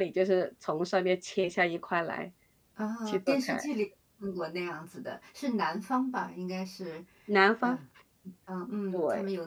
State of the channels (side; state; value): both; identical; correlation 1.00